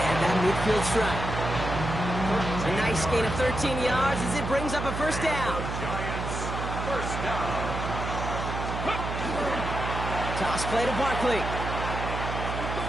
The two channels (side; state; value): right; noise; hum, 4 dB below the sound